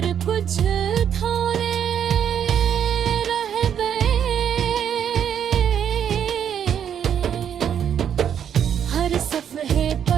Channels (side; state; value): left; quieter; 8.8 dB